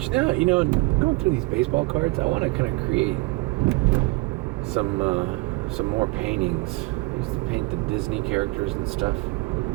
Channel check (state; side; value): quieter; left; 24.4 dB